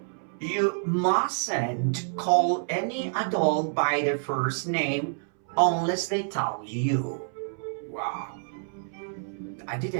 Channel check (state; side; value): silent; left; 59 dB below the other